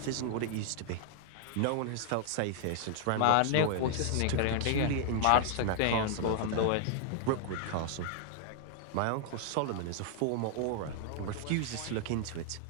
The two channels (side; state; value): both; different; correlation -0.01